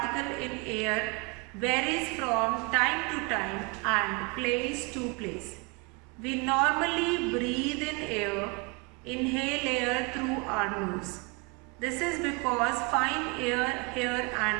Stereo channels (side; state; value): left; quieter; 29.1 dB